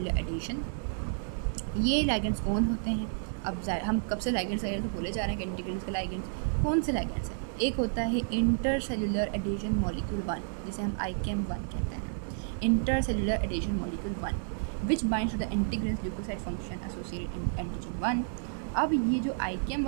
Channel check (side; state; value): left; silent; digital silence